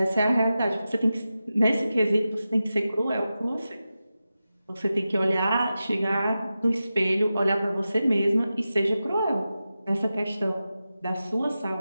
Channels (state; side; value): inverted; both; correlation -0.92